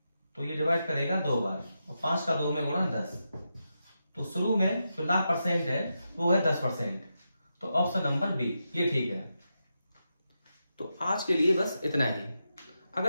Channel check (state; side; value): inverted; both; correlation -0.87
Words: तो ये डिवाइड करेगा 2 बार, और 5 का 2 में गुणा 10। तो शुरू में जो लाभ परसेंट है वो है 10%। तो ऑप्शन नंबर बी ये ठीक है। तो आज के लिए बस इतना ही।